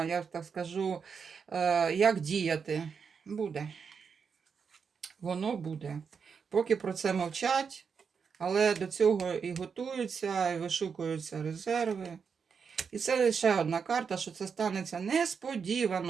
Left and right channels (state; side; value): quieter; left; 6.1 dB